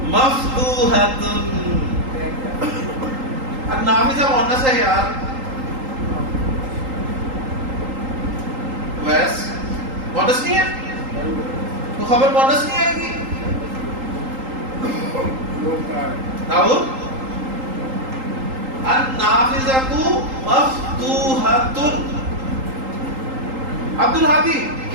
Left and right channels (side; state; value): left; late; 3.8 ms